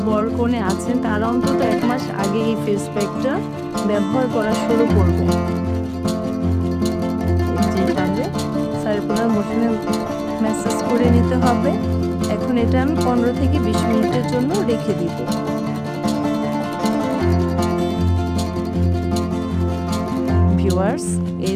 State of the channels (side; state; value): both; identical; correlation 1.00